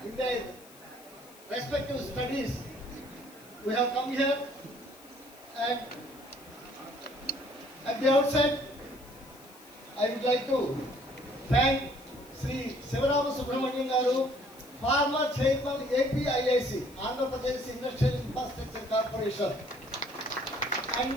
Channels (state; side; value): noise; left; hiss, 23 dB below the sound